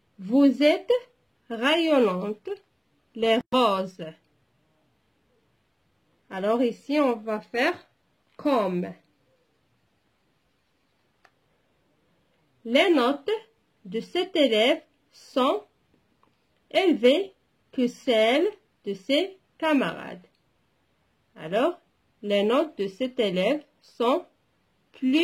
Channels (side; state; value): both; identical; correlation 1.00